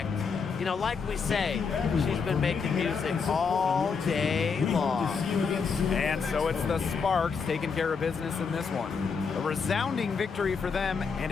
You know, like we say, she's been making music all day long. And so it's the Sparks taking care of business in this one. A resounding victory for them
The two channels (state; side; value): quieter; right; 5.5 dB